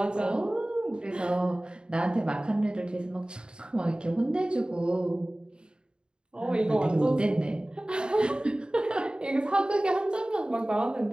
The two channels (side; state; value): left; late; 0.050 ms